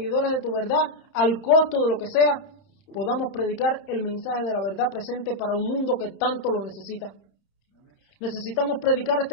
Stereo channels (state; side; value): late; right; 31 ms